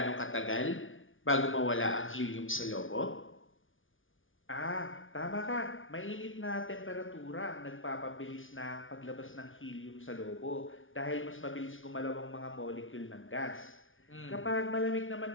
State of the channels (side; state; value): right; late; 0.57 ms